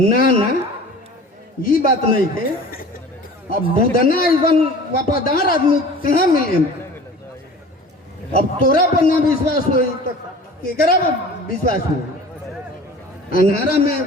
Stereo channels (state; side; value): normal; both; correlation 0.42